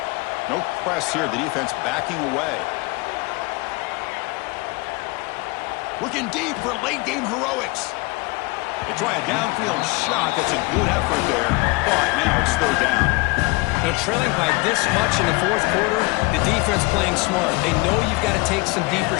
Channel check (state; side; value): quieter; right; 24.9 dB